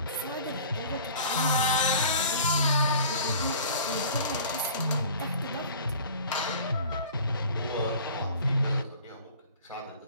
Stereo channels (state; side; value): inverted; both; correlation -0.44